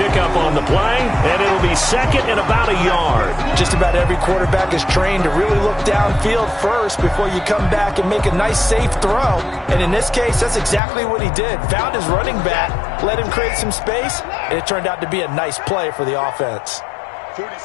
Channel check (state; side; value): drops out; right; at 10.8 s